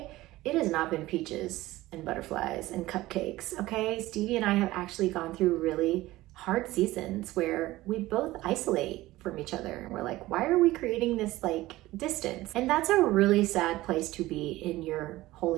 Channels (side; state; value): left; quieter; 17.5 dB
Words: it has not been peaches and butterflies and cupcakes, okay? Stevie and I have actually gone through really hard seasons where we both isolate from each other. And we're like, why are we creating this like distance? And that's a really sad place to be in your